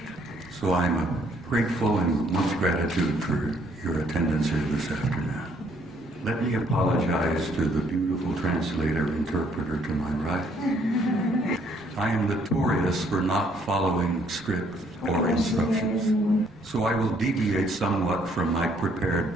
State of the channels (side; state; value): both; normal; correlation 0.66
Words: So I'm grateful and much gratitude for your attendance here this afternoon. Let me apologize to the beautiful interpreter to my right. I am notorious for not following script or instructions, so I will deviate somewhat from my